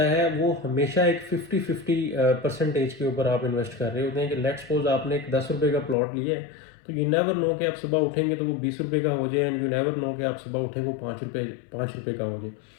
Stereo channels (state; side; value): drops out; right; at 6.0 s